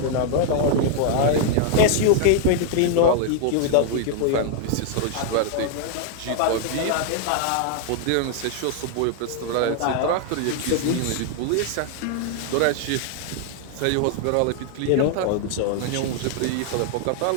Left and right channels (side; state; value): both; different; correlation 0.00